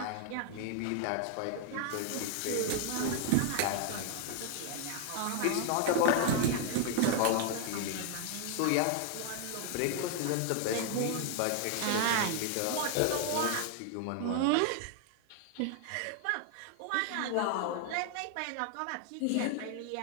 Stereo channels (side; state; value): both; different; correlation 0.00